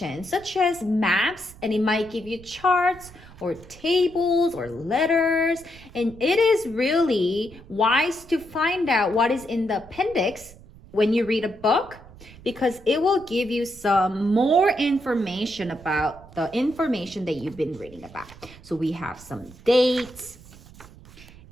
such as maps, and it might give you charts or tables or letters. And it is really wise to find out what is in the appendix when you read a book, because it will give you some more information about the information that you've been reading about. So we have some dates,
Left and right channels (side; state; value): right; noise; rumble, 20 dB below the sound